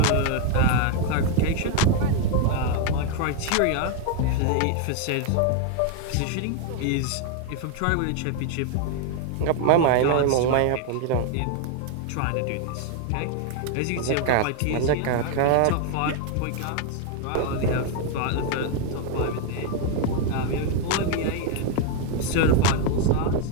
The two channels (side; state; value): both; different; correlation 0.01